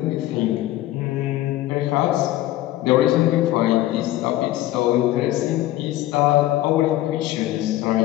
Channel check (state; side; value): quieter; right; 15.3 dB